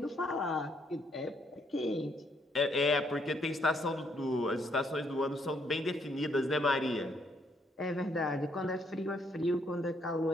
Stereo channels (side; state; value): both; normal; correlation 0.71